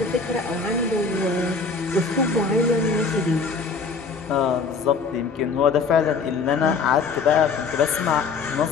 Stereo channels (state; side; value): quieter; right; 4.7 dB